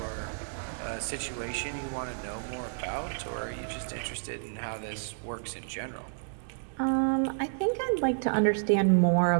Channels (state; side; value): silent; left; digital silence